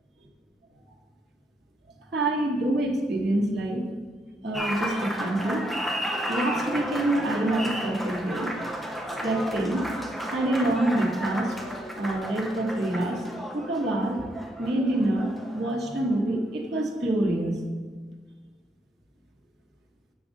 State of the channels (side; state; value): both; normal; correlation 0.76